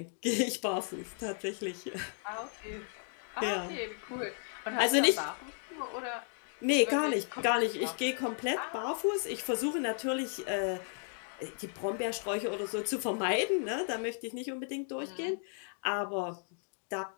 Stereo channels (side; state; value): right; silent; 55 dB below the other